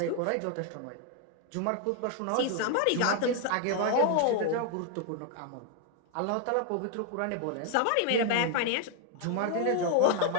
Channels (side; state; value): both; different; correlation 0.00